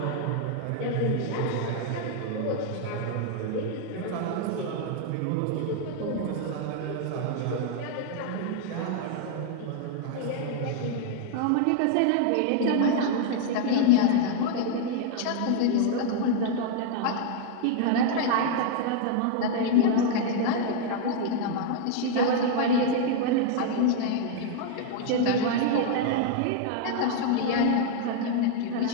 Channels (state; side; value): different; both; correlation 0.00